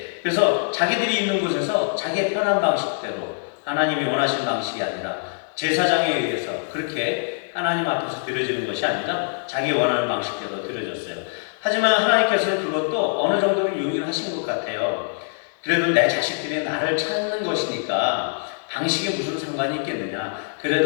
그래서 자기들이 있는 곳에서 자기의 편한 방식대로, 하나님이 원하신 방식이 아니라 제사장에 의해서 그렇게 하나님 앞에서 드려지는 것이 아니라 자기 원하는 방식대로 드려졌어요. 하지만 하나님께서는 그것도 어느 정도는 용인하신 것 같아요. 그래도 내 자식들이 나를 찾는 것이니까 방식에 무슨 상관이 있겠느냐.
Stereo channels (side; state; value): right; silent; digital silence